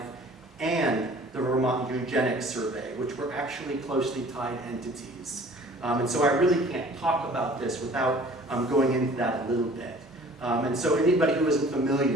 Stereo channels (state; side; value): normal; both; correlation 0.50